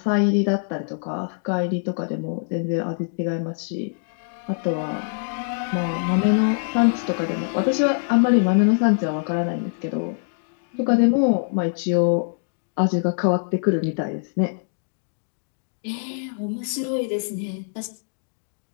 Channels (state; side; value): silent; right; digital silence